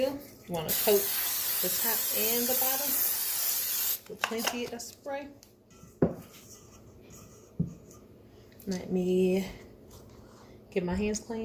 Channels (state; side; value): identical; both; correlation 1.00